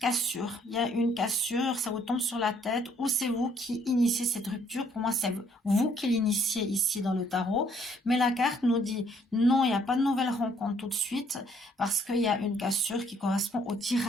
Il y a une cassure, ça vous tombe sur la tête ou c'est vous qui initiez cette rupture. Pour moi, c'est vous qui l'initiez ici dans le tarot. Mais la carte nous dit non, il n'y a pas de nouvelle rencontre tout de suite parce qu'il y a une cassure qui correspond au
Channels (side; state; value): both; normal; correlation 0.65